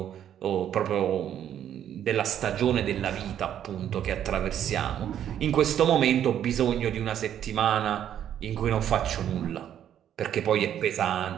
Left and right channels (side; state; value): left; quieter; 10.1 dB